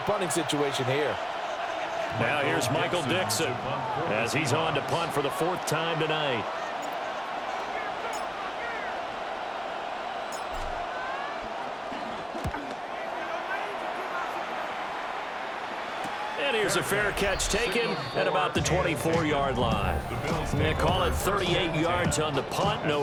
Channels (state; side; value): identical; both; correlation 1.00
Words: situation here. Now here's Michael Dixon as he's on to punt for the 4th time tonight. And here's a fair catch taken at about the 24-yard line. They call it 38 yards on the punt, no